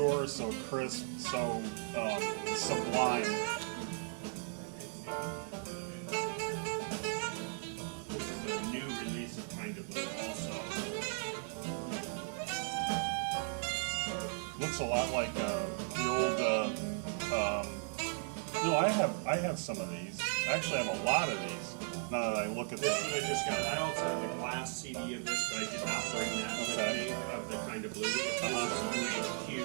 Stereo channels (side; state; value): left; silent; 53 dB below the other